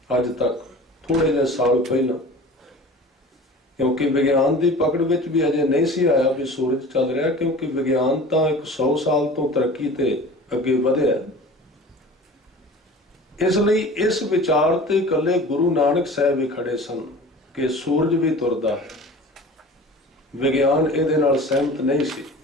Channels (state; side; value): normal; both; correlation 0.40